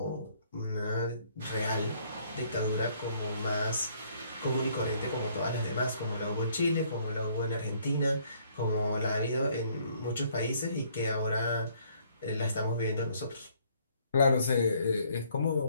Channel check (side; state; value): both; inverted; correlation -0.64